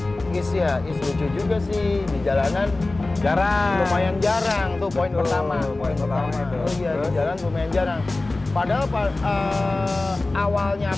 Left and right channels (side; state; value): right; quieter; 3.1 dB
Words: Is lucu juga sih di jalanan. Lumayan jarang tuh poin pertama. Poin pertama itu. Oh iya, di jalan lumayan jarang. Padahal awalnya